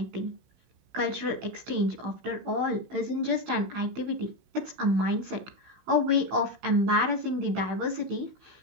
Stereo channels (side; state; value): left; late; 16 ms